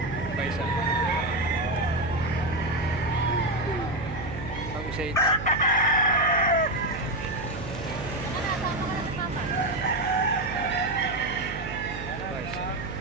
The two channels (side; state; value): right; noise; hum, 9 dB below the sound